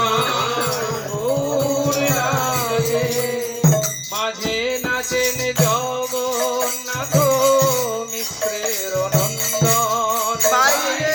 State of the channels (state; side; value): identical; both; correlation 1.00